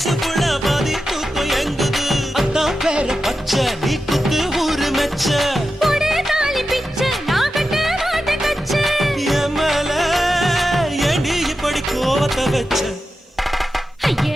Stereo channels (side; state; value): both; normal; correlation 0.91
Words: புள்ள பாதி தூக்கம் எங்குது. பத்த வச்ச